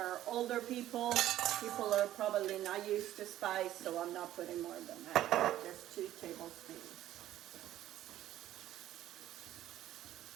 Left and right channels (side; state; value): left; quieter; 13.2 dB